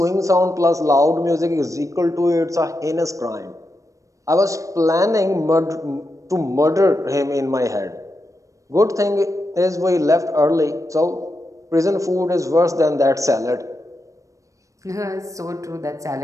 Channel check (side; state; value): left; late; 0.16 ms